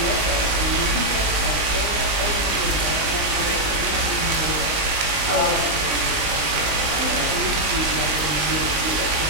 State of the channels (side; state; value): left; late; 20 ms